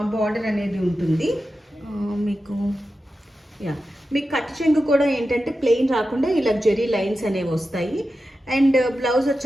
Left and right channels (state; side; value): normal; both; correlation 0.92